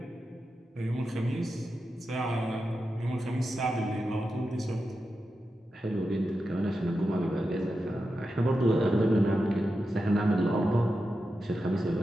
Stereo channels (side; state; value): both; normal; correlation 0.90